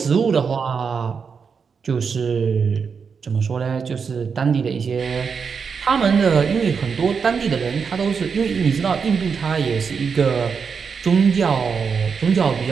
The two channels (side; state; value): left; quieter; 5.9 dB